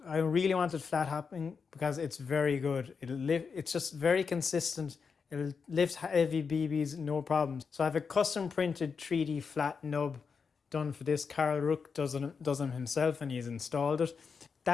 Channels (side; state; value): right; quieter; 5.6 dB